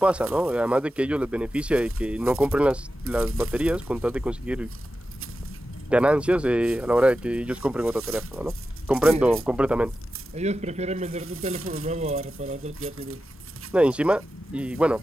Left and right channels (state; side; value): normal; both; correlation 0.92